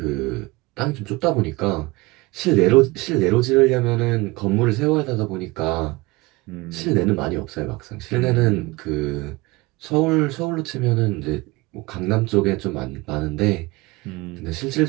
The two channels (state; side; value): quieter; left; 22.9 dB